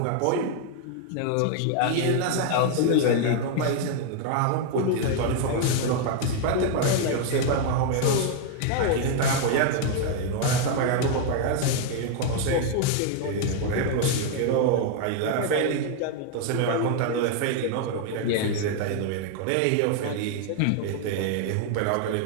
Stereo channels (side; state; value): both; different; correlation 0.00